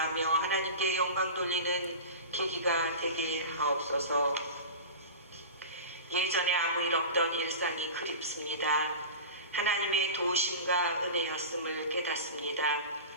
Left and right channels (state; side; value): inverted; both; correlation -0.31